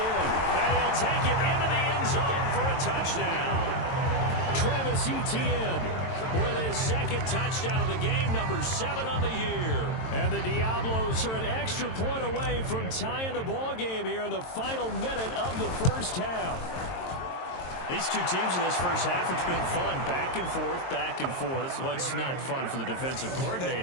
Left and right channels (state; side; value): late; right; 22 ms